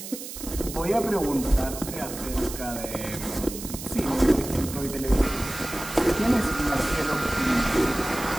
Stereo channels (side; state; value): right; noise; hiss, 10 dB below the sound